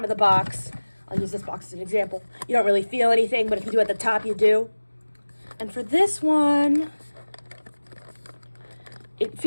of the box, I'll use this box as an example, you don't really feel anything, but if you do at the top, you do. And for this one, it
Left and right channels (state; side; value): inverted; both; correlation -1.00